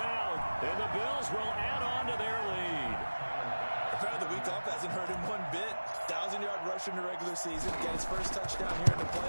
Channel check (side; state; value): both; inverted; correlation -1.00